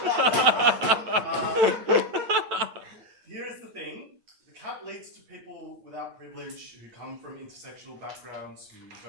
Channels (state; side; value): late; left; 8.9 ms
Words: Here is the thing. The CAP leads to people without privilege who come from intersectional backgrounds, who